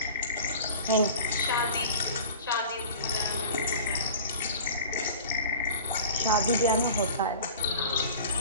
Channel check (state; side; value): inverted; both; correlation -0.40